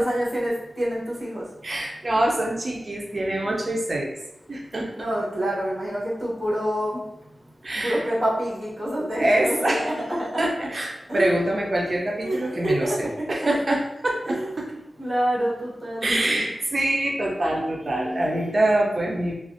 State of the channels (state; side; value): normal; both; correlation 0.94